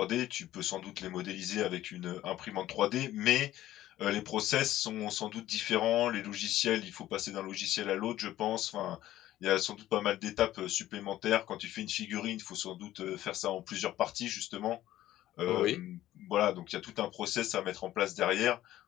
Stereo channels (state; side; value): quieter; right; 14.1 dB